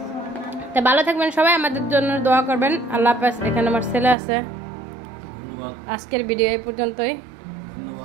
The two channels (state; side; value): drops out; left; at 4.2 s